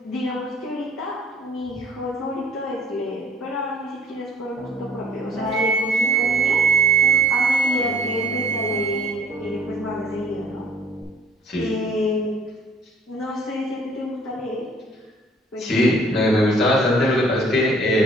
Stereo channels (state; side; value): normal; both; correlation 0.55